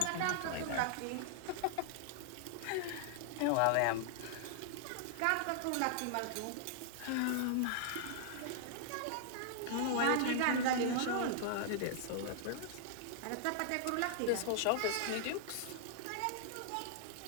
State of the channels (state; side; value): different; both; correlation -0.01